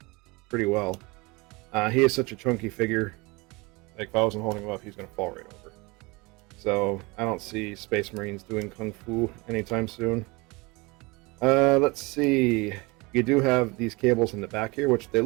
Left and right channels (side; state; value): left; quieter; 25.5 dB